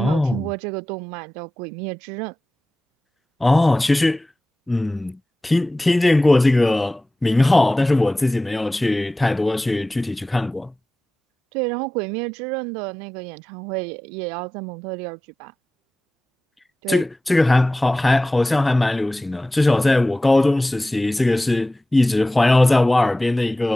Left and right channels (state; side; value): normal; both; correlation 0.96